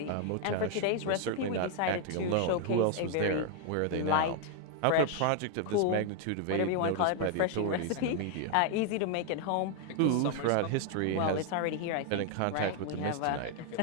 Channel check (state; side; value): different; both; correlation 0.00